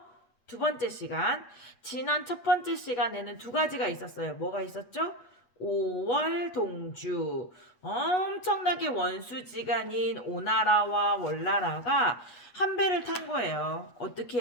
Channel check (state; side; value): late; right; 8.2 ms